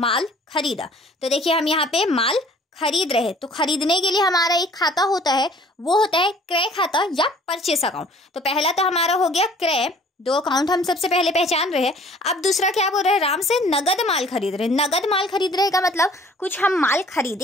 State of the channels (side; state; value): both; normal; correlation 0.53